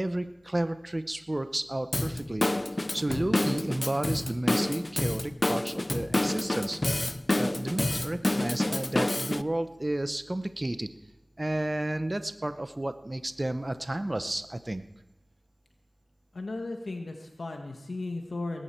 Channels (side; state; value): both; normal; correlation 0.98